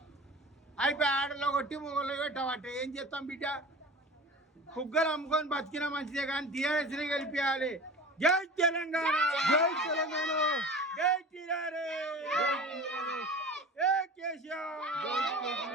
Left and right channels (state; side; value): normal; both; correlation 0.36